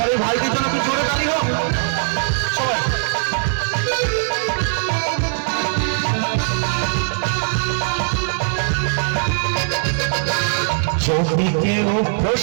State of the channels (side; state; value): left; silent; 66 dB below the other